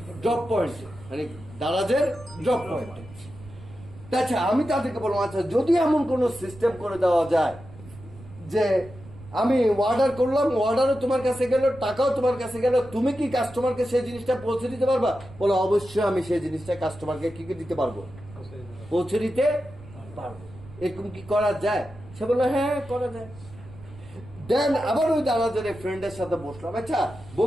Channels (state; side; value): noise; right; rumble, 19 dB below the sound